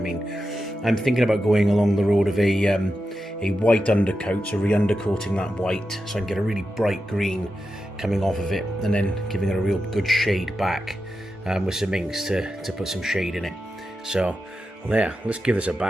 I'm thinking about going along the road of a white undercoat, so re-undercoating that white so I can get a really bright green coming off of it, and then giving it a real good shade back with some inks to put some shade in it. So well, yeah, let's give this a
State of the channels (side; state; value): both; normal; correlation 0.90